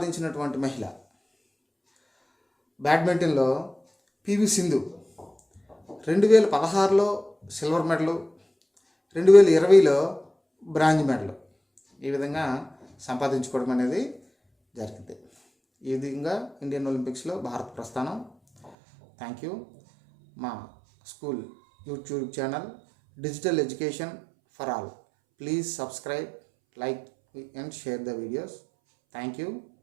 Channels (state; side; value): drops out; left; at 18.7 s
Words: మహిళ బ్యాడ్మింటన్లో పివి సింధు 2016లో సిల్వర్ మెడలు, 2020లో బ్రాంజ్ మెడల్ ఈ విధంగా సంపాదించుకోవడం అనేది జరిగింది. ఈ విధంగా ఇండియన్ ఒలింపిక్స్లో భారత్ ప్రస్థానం. Thank you. మా school YouTube channel digital education for all. Please subscribe, like and share the videos. Thank